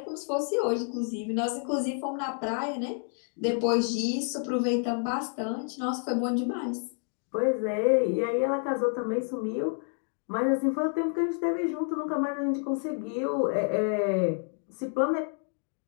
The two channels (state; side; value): silent; right; 58 dB below the other